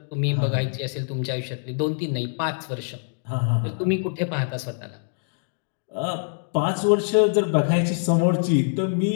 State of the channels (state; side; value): silent; right; digital silence